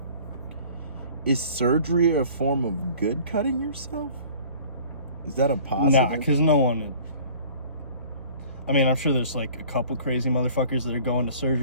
is surgery a form of good cutting yourself? Is that a positive? Nah, because no one... I mean, I'm sure there's like a couple crazy motherfuckers that are going to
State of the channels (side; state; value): both; inverted; correlation -0.49